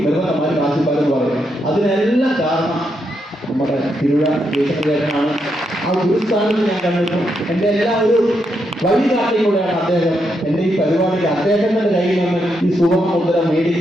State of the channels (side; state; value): both; normal; correlation 0.81